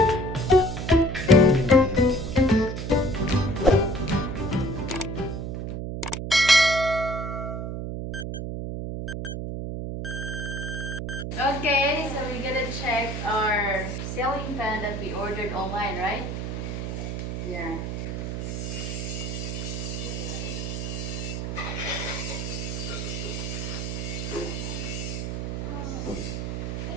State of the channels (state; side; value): noise; right; hum, 4 dB below the sound